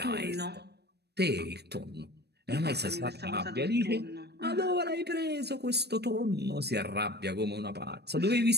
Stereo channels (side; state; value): left; late; 0.48 ms